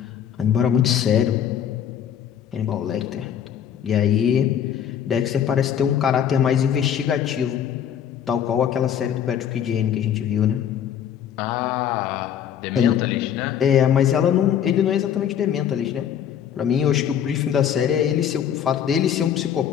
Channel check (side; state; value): right; quieter; 9.2 dB